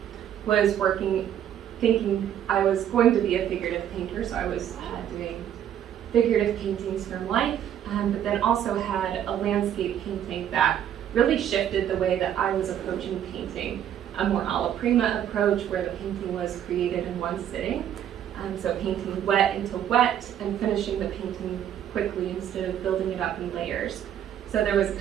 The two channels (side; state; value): left; quieter; 10.1 dB